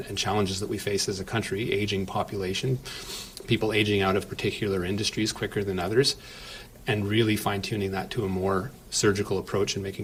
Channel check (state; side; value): identical; both; correlation 1.00